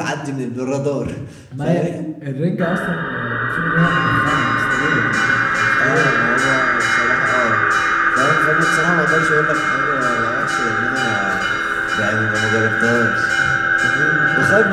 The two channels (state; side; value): identical; both; correlation 1.00